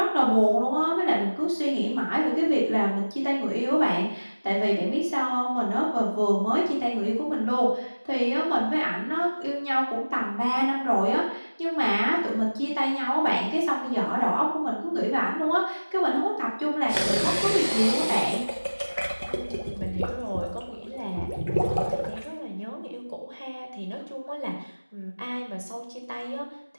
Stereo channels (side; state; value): both; inverted; correlation -1.00